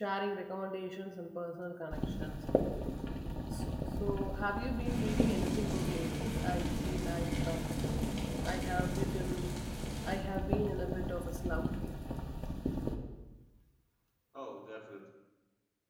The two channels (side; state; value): both; identical; correlation 1.00